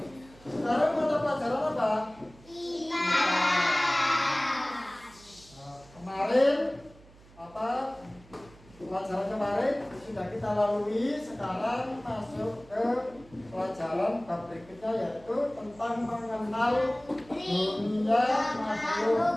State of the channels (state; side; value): noise; right; hum, 24 dB below the sound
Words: Sekarang mata pelajaran apa? Kemarin apa pelajaran kemarin sudah kita lalui. Sekarang masuk ke pelajaran bab berikutnya, yaitu tentang mengenal dunia